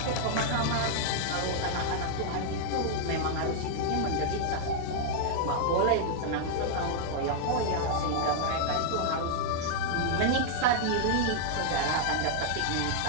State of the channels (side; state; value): both; different; correlation -0.01